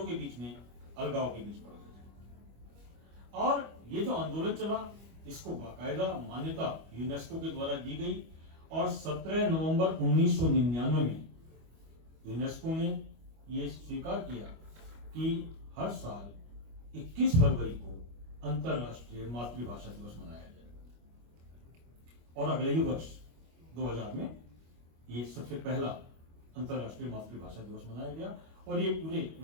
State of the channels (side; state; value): left; late; 25 ms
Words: के बीच में अलगाव के बीच पड़ गए। और ये जो आंदोलन चला, इसको बाकायदा मान्यता यूनेस्को के द्वारा दी गई और 17 नवंबर 1999 में यूनेस्को ने यह स्वीकार किया कि हर साल 21 फरवरी को अंतरराष्ट्रीय मातृभाषा दिवस मनाया जाए। और अगले ही वर्ष 2000 में ये सबसे पहला अंतर्राष्ट्रीय मातृभाषा दिवस मनाया गया, और ये पूरे